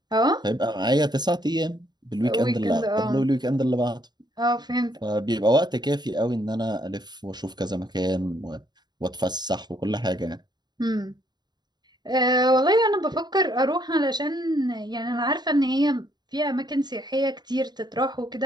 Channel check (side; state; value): left; late; 0.20 ms